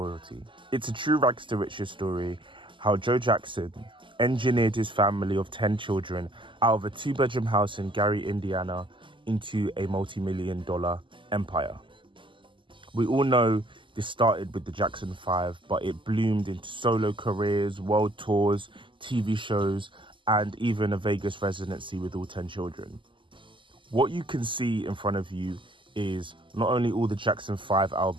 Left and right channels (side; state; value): left; late; 0.24 ms